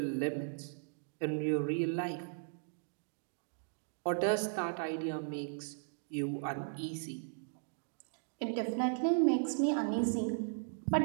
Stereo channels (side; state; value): left; silent; digital silence